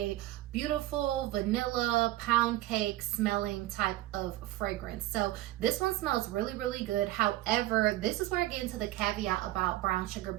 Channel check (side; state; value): left; quieter; 16.0 dB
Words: beautiful vanilla pound cake smelling type of fragrance. So this one smells really good. However, this is where I get into the caveat about Brown Sugar